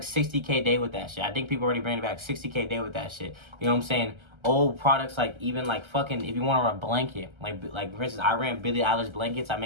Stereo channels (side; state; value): left; late; 1.3 ms